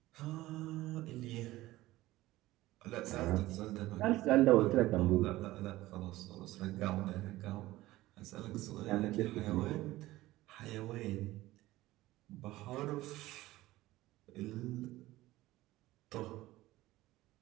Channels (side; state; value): left; quieter; 17.2 dB